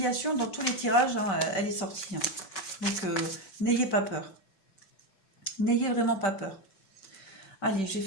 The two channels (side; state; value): right; late; 5.1 ms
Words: dans tous les tirages, hein, elle est sortie, hein. Donc, n'ayez pas peur. N'ayez vraiment pas peur. Allez, je vais